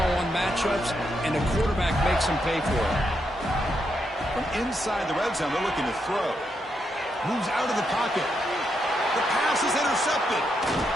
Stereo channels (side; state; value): both; normal; correlation 0.81